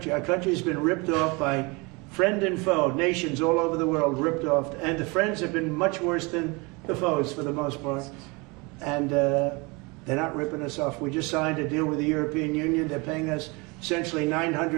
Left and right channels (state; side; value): quieter; left; 27.4 dB